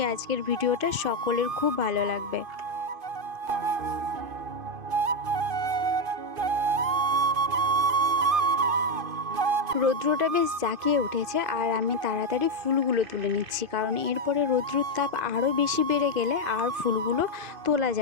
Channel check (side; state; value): left; late; 2.5 ms